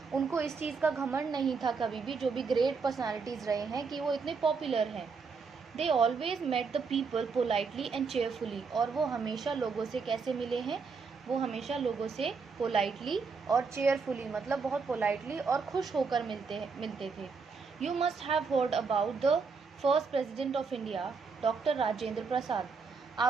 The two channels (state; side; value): quieter; left; 5.0 dB